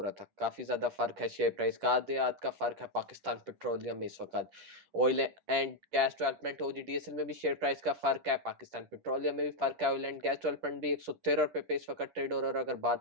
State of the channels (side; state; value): left; late; 10 ms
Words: रहा था। काफ़ी ज़्यादा फ़र्क है शेयर प्राइस का, आधे आध का फ़र्क है पाकिस्तान पेट्रोलियम में इस वक्त। Oil and gas development OGDSL में भी शेयर प्राइस का फ़र्क है, पाकिस्तान पेट्रोलियम में भी फ़र्क है। ऑयल एंड गैस डेवलपमेंट भी 113 रुपये पे इस वक्त ट्रेड हो रहा है। और अगर